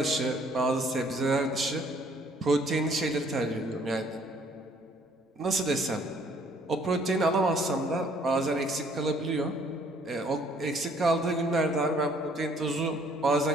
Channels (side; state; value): both; normal; correlation 0.61